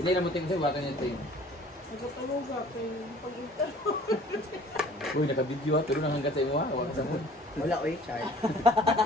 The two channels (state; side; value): normal; both; correlation 0.50